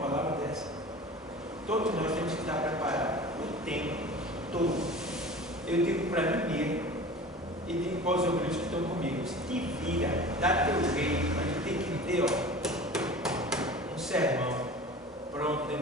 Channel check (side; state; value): both; normal; correlation 0.38